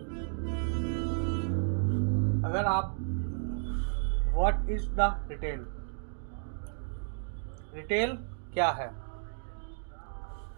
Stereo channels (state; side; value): silent; left; digital silence